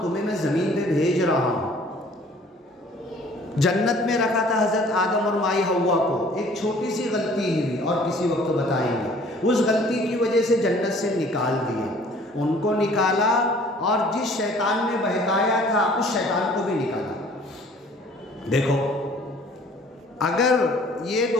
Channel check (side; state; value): both; normal; correlation 0.53